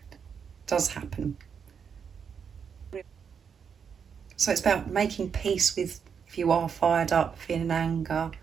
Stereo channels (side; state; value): left; quieter; 6.9 dB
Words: does happen. So it's about making peace with, if you are fired up, feeling anger,